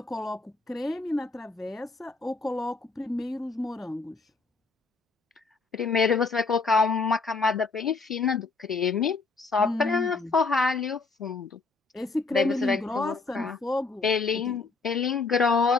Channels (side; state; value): right; quieter; 4.1 dB